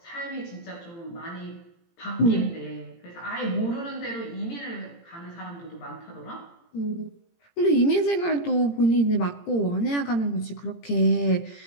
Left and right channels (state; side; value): late; right; 18 ms